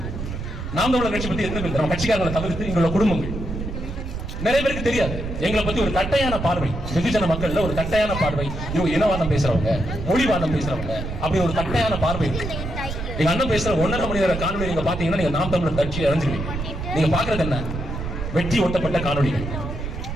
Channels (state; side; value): noise; right; rumble, 6 dB below the sound